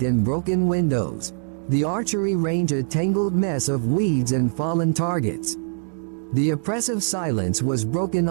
and broken windows. The archery range a tangled mess of weeds and fallen targets. The oppressive silence was broken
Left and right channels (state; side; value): silent; left; digital silence